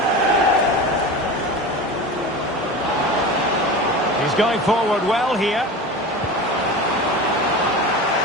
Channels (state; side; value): normal; both; correlation 0.30